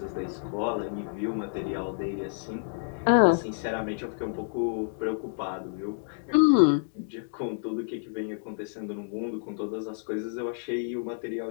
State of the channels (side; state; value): right; silent; digital silence